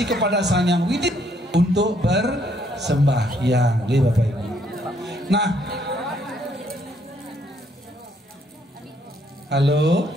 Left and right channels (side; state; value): both; normal; correlation 0.69